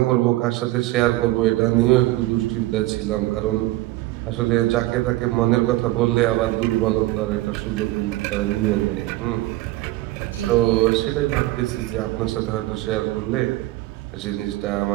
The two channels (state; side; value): quieter; left; 17.9 dB